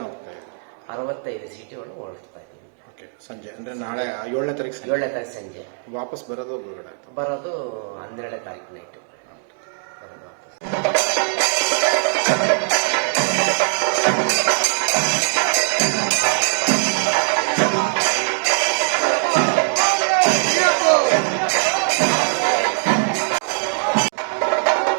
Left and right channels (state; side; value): silent; left; digital silence